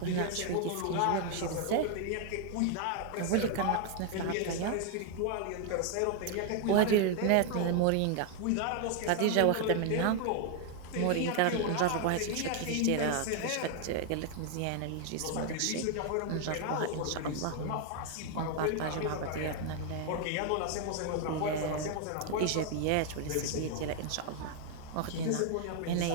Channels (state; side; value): different; both; correlation 0.00